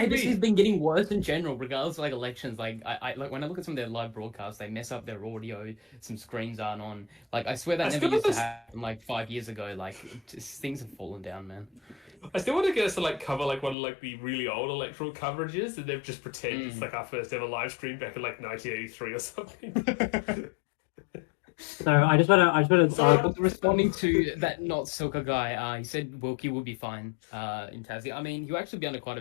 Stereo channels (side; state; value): right; drops out; at 13.8 s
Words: ABC's me. been getting worse in general, regardless of like elections. Like, I like when I look at some of their live broadcasts, they mess up their audio. Some screens aren't on. Like, I swear that I never still used to was- happen like 5 years ago. Like, things have fallen down, man. I still want to get us to like cover like one of like the really old electoral coverages, and they've just pretend it's like our first ever live stream back in like 1983 or something. So I just want to. So- Responding to that not Silka guy, he said Wilkie will be fine in Tassie. I mean, he'll actually be under quite a